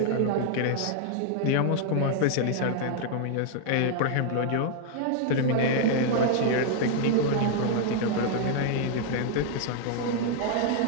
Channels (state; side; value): different; both; correlation 0.00